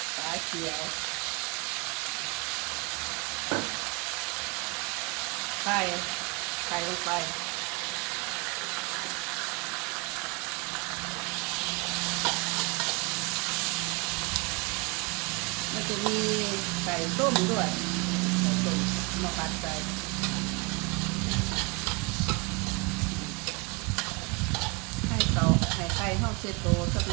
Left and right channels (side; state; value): left; quieter; 29.2 dB